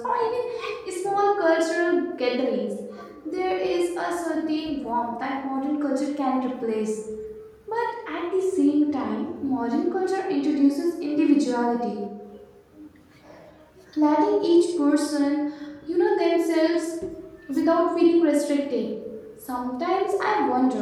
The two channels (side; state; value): both; identical; correlation 1.00